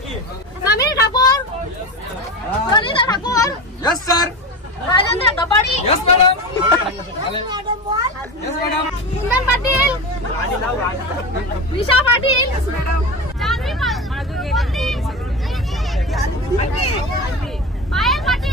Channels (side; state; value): both; normal; correlation 0.25